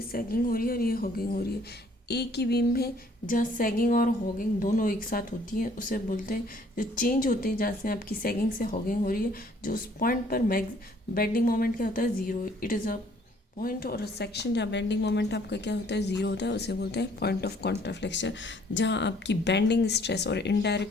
सैगिंग हो रही है और ये हॉगिंग हो रही है। एक ही बीम है जहाँ सैगिंग और हॉगिंग दोनों एक साथ होती हैं, उसे बोलते हैं, जो चेंज होते हैं जहाँ से आपकी सैगिंग से हॉगिंग हो रही है, जो उस पॉइंट पर बेंडिंग मोमेंट क्या होता है, zero. It is a point और सेक्शन जहाँ बेंडिंग मोमेंट आपका क्या होता है, ज़ीरो होता है, उसे बोलते हैं पॉइंट ऑफ कॉन्ट्राफ्लेक्शन। जहाँ आपकी बेंडिंग स्ट्रेस और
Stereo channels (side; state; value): both; normal; correlation 0.60